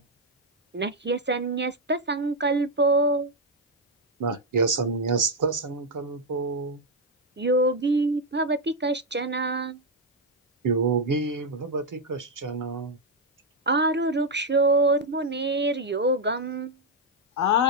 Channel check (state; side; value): normal; both; correlation 0.02